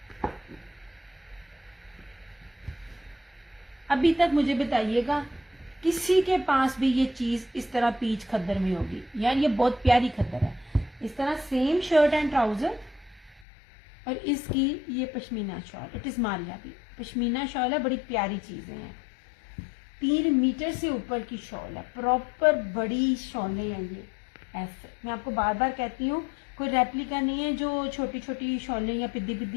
अभी तक मुझे बताइएगा किसी के पास भी ये चीज इस तरह पीच खद्दर में होगी? यार ये बहुत प्यारी खद्दर है, इस तरह सेम शर्ट एंड ट्राउजर, और इसकी ये pashmina shawl, it is Maria भी पश्मीना शॉल है, बड़ी प्यारी चीजें हैं। 3 मीटर से ऊपर की शॉल है, प्रॉपर बड़ी शॉलें हैं ये। ऐसे मैं आपको बार बार कहती हूँ, कोई रेप्लिका नहीं है जो छोटी छोटी शॉलें या पिद्दी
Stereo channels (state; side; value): drops out; right; at 13.5 s